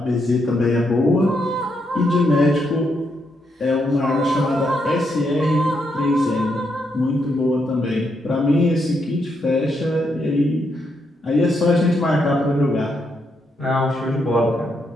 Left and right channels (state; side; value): normal; both; correlation 0.79